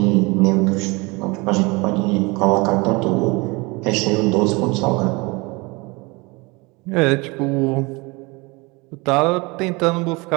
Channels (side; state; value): left; quieter; 26.0 dB